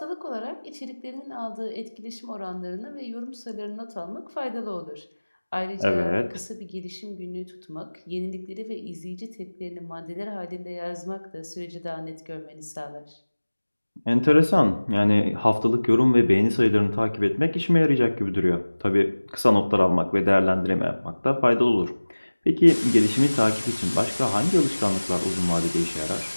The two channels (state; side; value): inverted; both; correlation -1.00